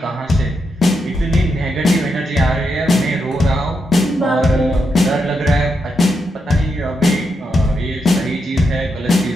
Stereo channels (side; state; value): both; normal; correlation 0.83